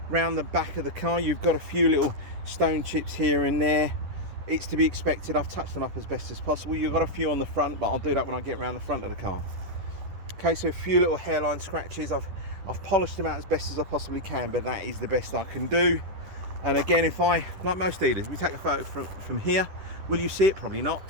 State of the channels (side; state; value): left; late; 10 ms